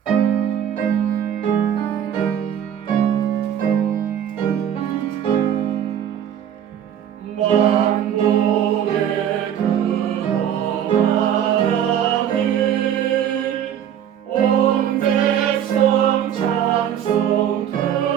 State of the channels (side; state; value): left; quieter; 9.7 dB